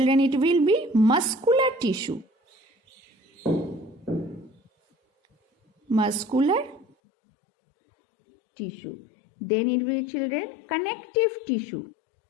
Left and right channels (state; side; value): drops out; right; at 6.9 s